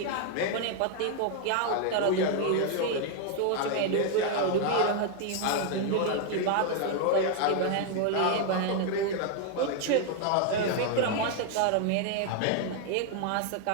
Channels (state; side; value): different; both; correlation 0.00